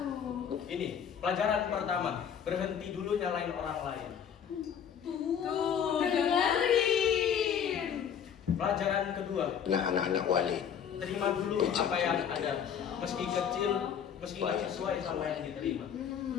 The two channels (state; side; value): quieter; right; 8.1 dB